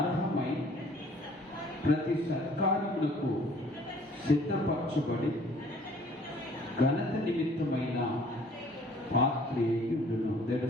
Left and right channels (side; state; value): both; normal; correlation 0.55